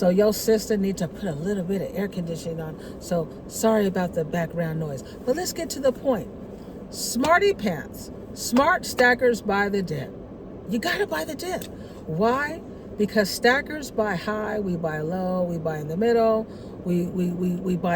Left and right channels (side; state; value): both; identical; correlation 1.00